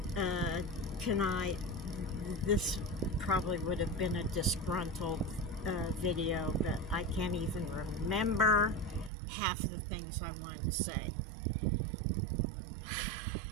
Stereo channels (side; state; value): left; drops out; at 9.1 s